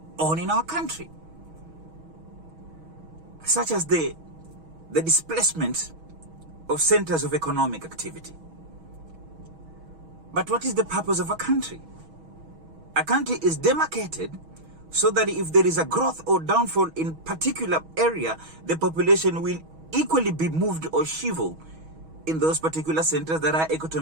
on in our country, such as the displacement of centers of economic activity. But what is the purpose of a country? A country is demarcated so that if there is a growth or downfall in particular area, the population will equally be moved or shriveled in those particular centers that our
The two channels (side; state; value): left; late; 6.2 ms